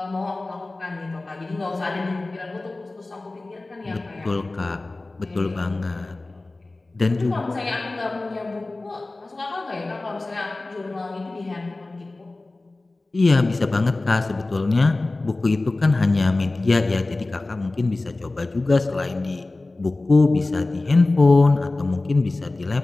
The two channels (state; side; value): quieter; right; 3.1 dB